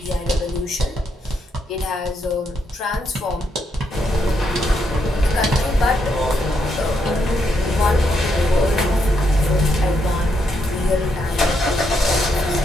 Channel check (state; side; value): normal; both; correlation 0.78